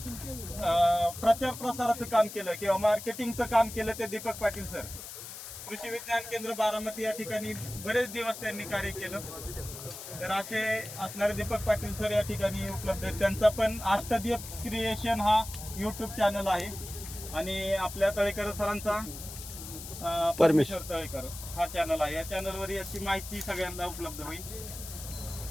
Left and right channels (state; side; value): noise; left; hiss, 11 dB below the sound